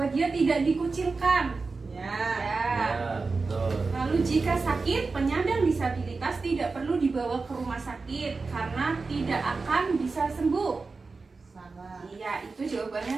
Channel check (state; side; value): quieter; left; 4.1 dB